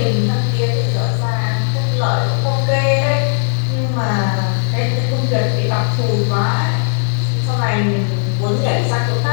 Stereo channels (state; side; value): silent; right; digital silence